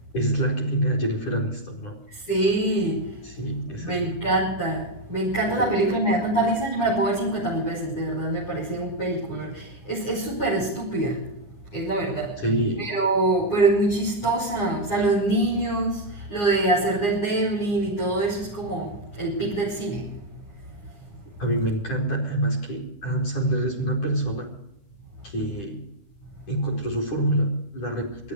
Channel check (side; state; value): right; late; 9.8 ms